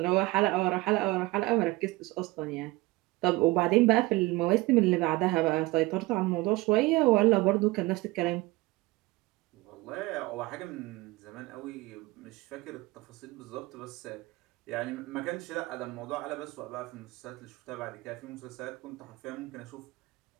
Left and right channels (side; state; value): left; quieter; 21.4 dB